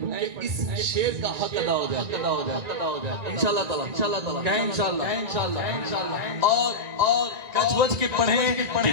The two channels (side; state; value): left; late; 1.9 ms